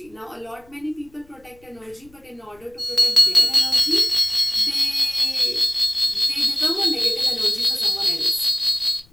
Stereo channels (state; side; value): noise; left; rumble, 29 dB below the sound